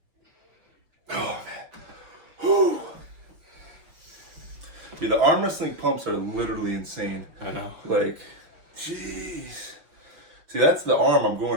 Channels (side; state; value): left; late; 6.1 ms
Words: Oh man. Whew. Dude, the arm wrestling pumps are literally insane. I know. Like, jeez. See, that's the arm I'm